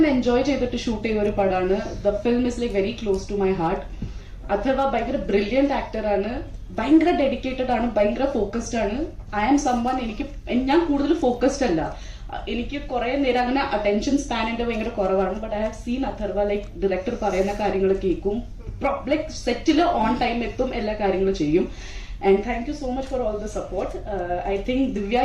എൻജോയ് ചെയ്തിട്ട് ഷൂട്ട് ചെയ്ത ഒരു പടമാണ്. The film is like very close to my heart. Atharva ഭയങ്കര ബ്രില്യന്റ് ആക്ടറാണ്, ഭയങ്കര ഡെഡിക്കേറ്റഡ് ആണ്, ഭയങ്കര ഫോക്കസ്ഡ് ആണ്. ഐ ആം സംവൺ, ഞാൻ കൂടുതൽ ഫോക്കസ്ഡ് അല്ല. എനിക്ക് കുറെ നേരം അങ്ങനെ അറ്റൻഷൻ സ്പാൻ എന്റെ ഭയങ്കര കുറവാണ്. But I have seen Atharva like director പറയുന്ന കാര്യങ്ങൾ കേൾക്കും, ലൈക്ക് സെറ്റില് ഓൺ ടൈം എത്തും, എല്ലാ കാര്യങ്ങളും ചെയ്യും. And thank you so much for all the support. I think Divya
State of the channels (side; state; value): both; identical; correlation 1.00